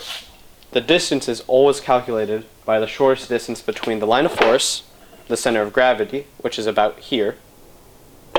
the distance is always calculated by the shortest distance between the line of force, the center of gravity, which is about here,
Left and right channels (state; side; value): identical; both; correlation 1.00